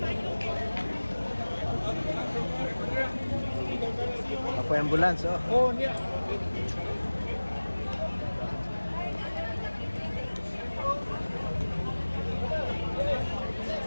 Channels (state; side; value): inverted; both; correlation -1.00